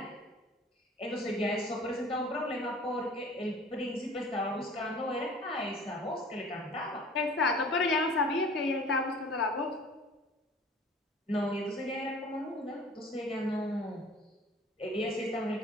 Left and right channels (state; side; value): normal; both; correlation 0.46